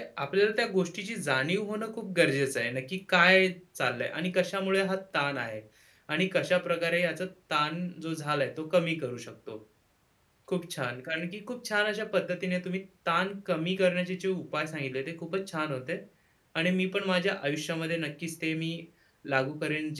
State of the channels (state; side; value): identical; both; correlation 1.00